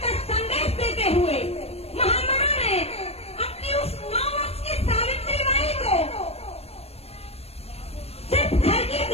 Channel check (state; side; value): late; right; 0.29 ms